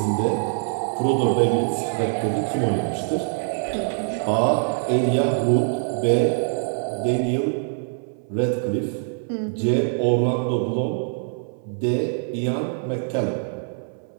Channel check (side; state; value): left; silent; 63 dB below the other